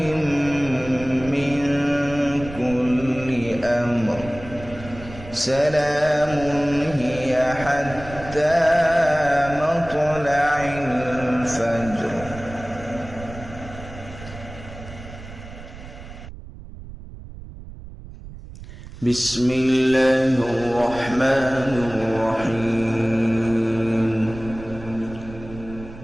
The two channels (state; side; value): noise; right; rumble, 14 dB below the sound